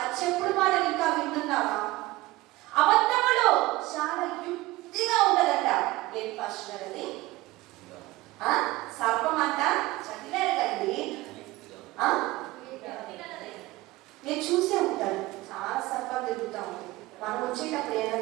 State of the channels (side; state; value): left; quieter; 19.1 dB